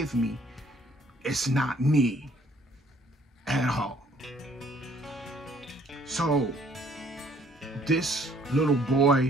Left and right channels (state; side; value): normal; both; correlation 0.61